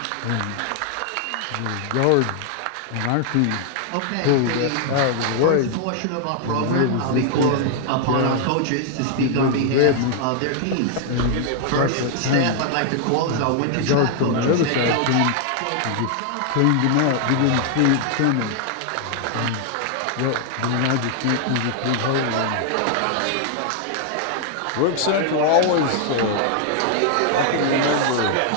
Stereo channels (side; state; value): both; different; correlation 0.00